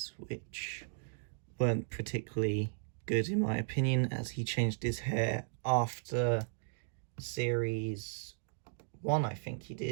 which weren't particularly good in my opinion, as he changed his hair after series 1, I think he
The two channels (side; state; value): left; silent; digital silence